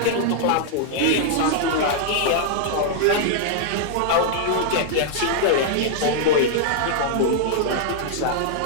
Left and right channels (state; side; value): different; both; correlation -0.01